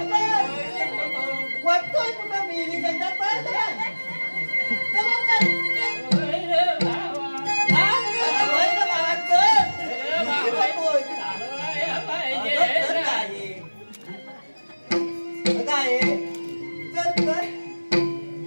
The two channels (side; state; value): both; inverted; correlation -1.00